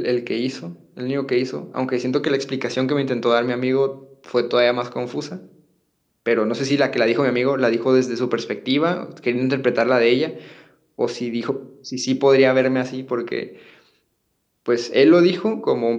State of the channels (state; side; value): identical; both; correlation 1.00